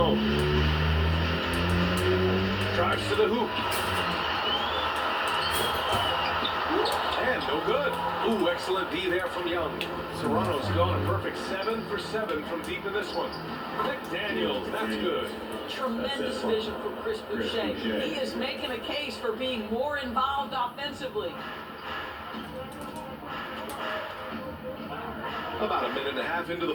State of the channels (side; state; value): both; identical; correlation 1.00